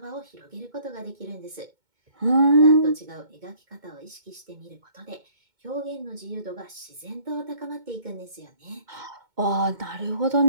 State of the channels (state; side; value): late; left; 2.2 ms